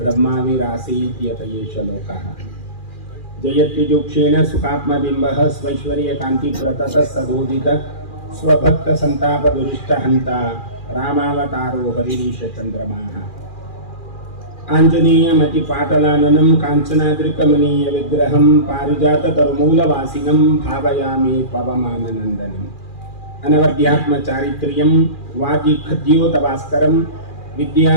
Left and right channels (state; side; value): late; right; 2.4 ms